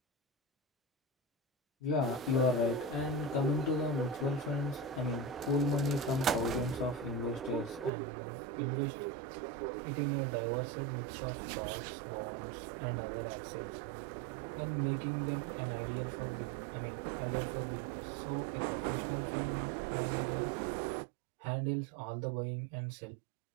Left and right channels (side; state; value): left; drops out; at 7.9 s